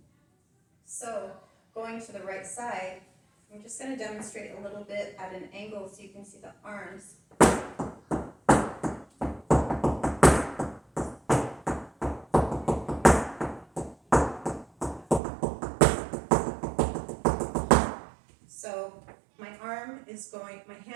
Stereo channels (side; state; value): left; drops out; at 15.2 s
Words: So going to the right side, I'm just going to demonstrate a little bit at an angle so you can see the arms. So my